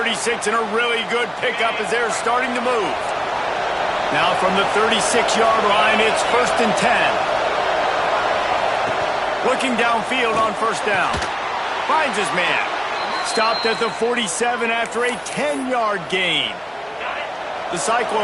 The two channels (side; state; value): both; identical; correlation 1.00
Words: and a really good pickup as they're starting to move. Now from the 36-yard line, it's 1st and 10. Looking downfield on first down. Finds his man. Stopped at the 47 after a 10-yard gain. The